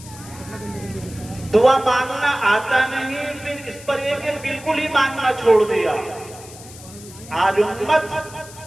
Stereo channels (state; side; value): noise; left; hiss, 18 dB below the sound